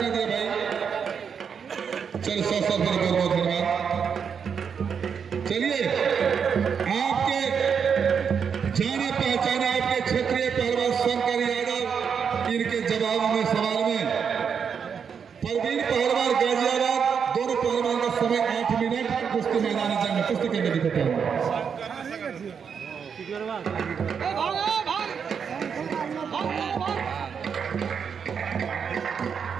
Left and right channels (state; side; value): quieter; left; 6.8 dB